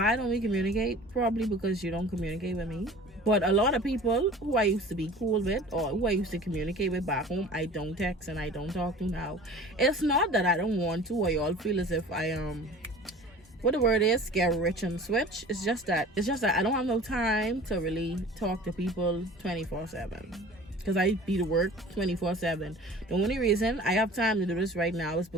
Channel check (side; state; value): both; normal; correlation 0.43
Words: don't we communicate? Probably because you don't communicate with me. But a lot of people who I used to be cool with or who I used to communicate with back home, I don't text and I don't talk to now. It's not that I don't want to or y'all feel as if I what the word is, get rich and switch. It's just that I don't have no time to really talk to people 24/7 because I be to work 24/7. The only reason I have time to do this right now is